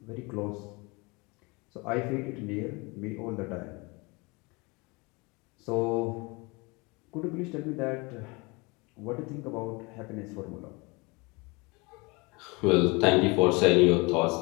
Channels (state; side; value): quieter; right; 27.0 dB